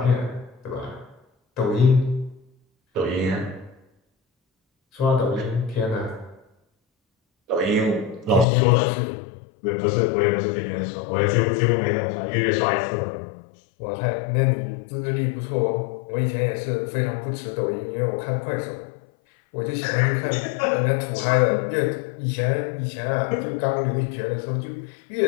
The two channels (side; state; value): right; drops out; at 8.5 s